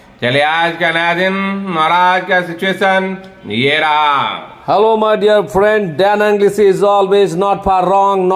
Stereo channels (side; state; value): both; identical; correlation 1.00